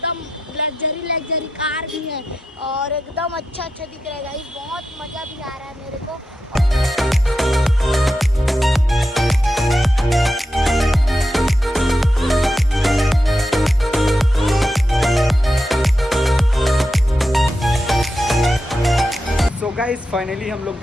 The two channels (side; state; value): both; normal; correlation 0.88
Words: लग्जरी कार भी है। और एकदम अच्छा दिख रहा है गाइस। बहुत मज़ा भी आ रहा है मेरे को। सो गाइस फाइनली हम लोग